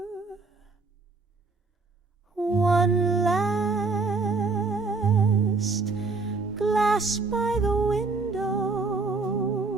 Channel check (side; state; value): left; quieter; 4.0 dB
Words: One last glass by the window,